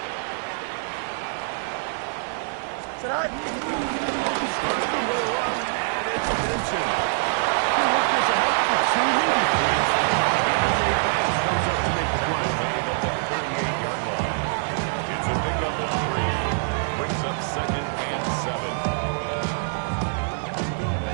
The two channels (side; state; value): left; silent; 62 dB below the other